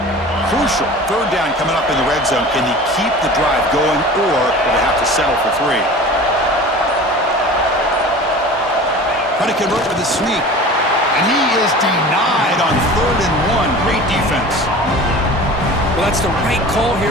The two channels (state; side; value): normal; both; correlation 0.39